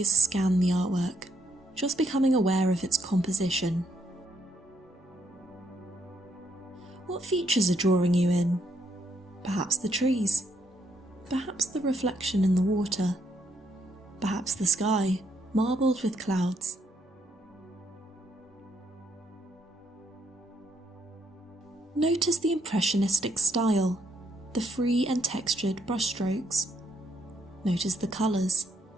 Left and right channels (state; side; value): normal; both; correlation 0.74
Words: scan the artwork, just becoming aware of its composition. What features are drawing you in? Perhaps the trees. Perhaps the reflection in the water. Perhaps the sky, marbled with clouds. Notice the impressionistic style, the free and textured brushstrokes. Notice the colours,